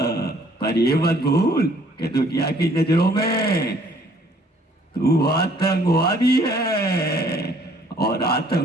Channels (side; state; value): both; normal; correlation 0.60